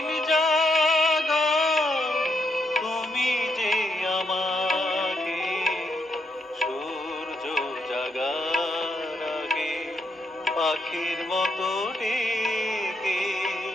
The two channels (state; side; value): normal; both; correlation 0.78